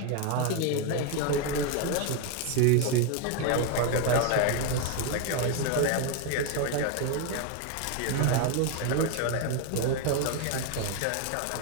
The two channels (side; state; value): both; different; correlation 0.01